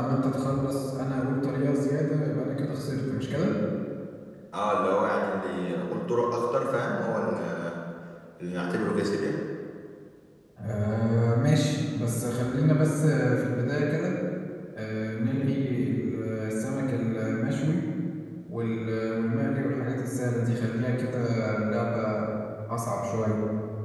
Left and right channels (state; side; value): identical; both; correlation 1.00